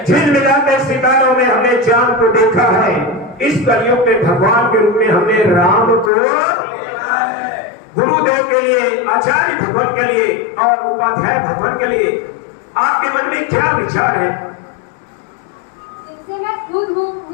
झिलमिलाते सितारों में हमने चांद को देखा है। इस कलयुग में भगवान के रूप में हमने राम को गुरुदेव के लिए, आचार्य भगवान के लिए और उपाध्याय भगवान के लिए आपके मन में क्या विचार है? जिनसे मैं खुद हूँ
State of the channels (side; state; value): right; drops out; at 6.1 s